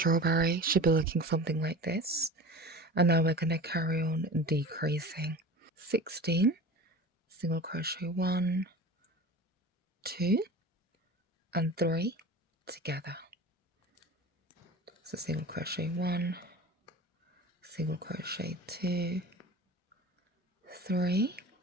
Should be looking something like this. And now we're going to carry on decreasing. 16, single crochet 1, 2 and 3 together. So single crochet 1, single crochet 2, 3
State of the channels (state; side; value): normal; both; correlation 0.35